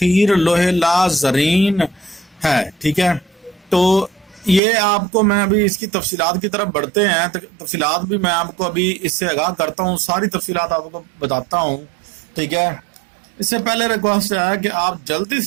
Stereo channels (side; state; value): left; drops out; at 4.6 s